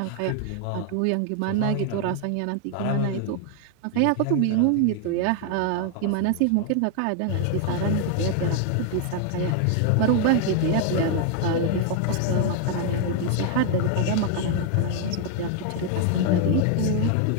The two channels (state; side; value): different; both; correlation 0.00